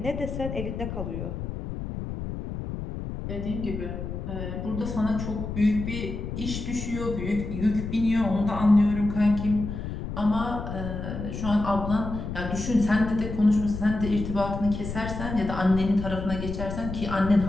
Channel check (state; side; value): noise; left; rumble, 6 dB below the sound